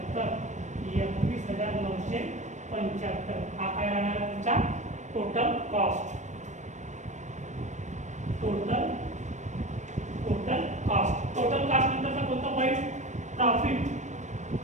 21,975 हा काय राहणार तुमचा टोटल कॉस्ट. टोटल कॉस्ट नंतरचा कोणता पॉईंट? प्रॉफिट.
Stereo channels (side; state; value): left; late; 0.34 ms